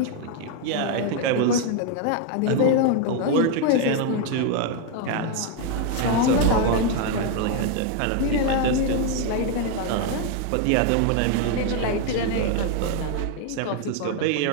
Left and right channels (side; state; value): both; different; correlation 0.01